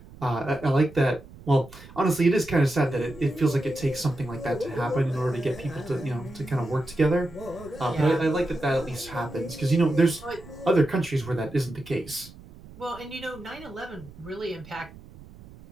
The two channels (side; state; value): right; noise; rumble, 19 dB below the sound